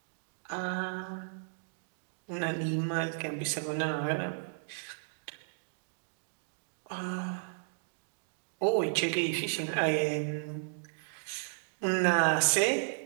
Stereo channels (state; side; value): silent; left; digital silence